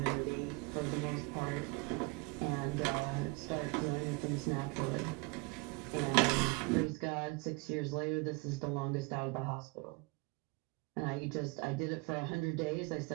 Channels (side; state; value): left; quieter; 27.4 dB